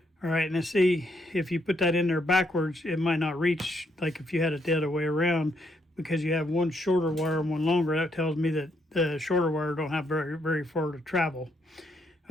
All right, now see, if you put that in there backwards, it might not reach, like if you had it the other way around, because you have one shorter wire and one longer. That tells me that the shorter wire don't have very, very far to travel.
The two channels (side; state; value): both; normal; correlation 0.75